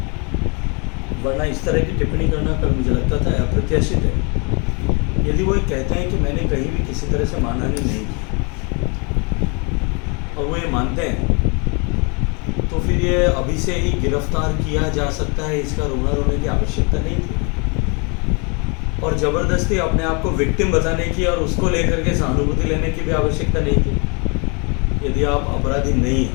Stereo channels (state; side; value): quieter; right; 33.1 dB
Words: वरना इस तरह की टिप्पणी करना कल मुझे लगता था अप्रत्याशित है। यदि वो कहते हैं कि मैंने कहीं भी किसी तरह से मानहानि नहीं की और वो ये मानते हैं, तो फिर ये अभी से ही गिरफ्तार किया जा सकता है, इसका रोना रोने की आवश्यकता नहीं थी। और ज़बरदस्ती अपने आप को विक्टिम बताने की और उसको लेकर के सहानुभूति लेने की भी आवश्यकता नहीं थी। यदि आप अपराधी नहीं